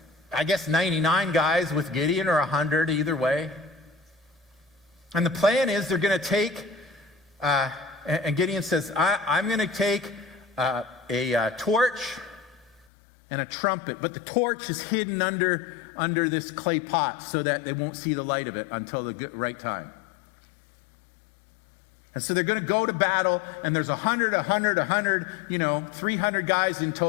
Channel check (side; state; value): right; drops out; at 12.9 s